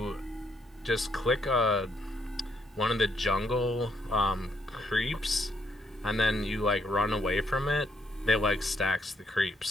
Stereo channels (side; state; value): both; normal; correlation 0.73